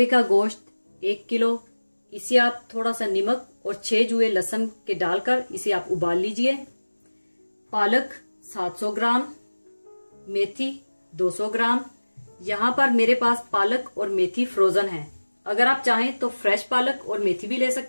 का गोश्त 1 किलो, इसे आप थोड़ा सा नमक और 6 जुए लहसुन के डालकर इसे आप उबाल लीजिए। पालक 700 ग्राम, मेथी 200 ग्राम। यहाँ पर मेरे पास पालक और मेथी फ्रोजन है। अगर आप चाहें तो फ्रेश पालक और मेथी भी ले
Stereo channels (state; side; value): inverted; both; correlation -1.00